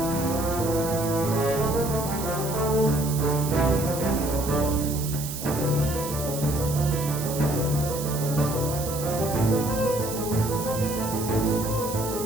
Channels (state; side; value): noise; right; hiss, 8 dB below the sound